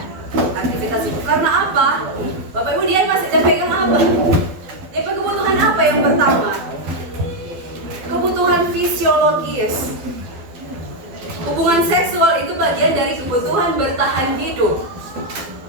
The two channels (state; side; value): late; left; 12 ms